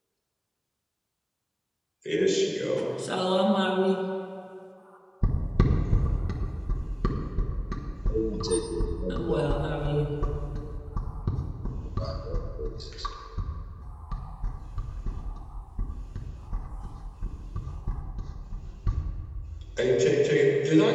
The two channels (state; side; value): identical; both; correlation 1.00